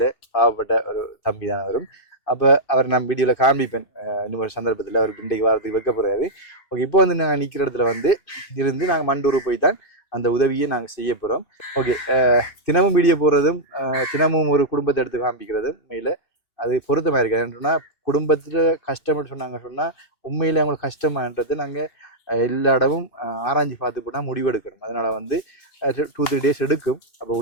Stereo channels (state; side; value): late; right; 2.5 ms